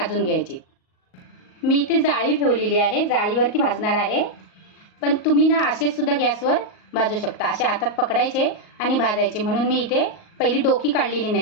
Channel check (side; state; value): right; late; 38 ms